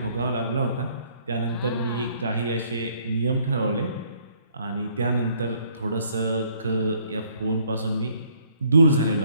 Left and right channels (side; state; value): both; inverted; correlation -0.64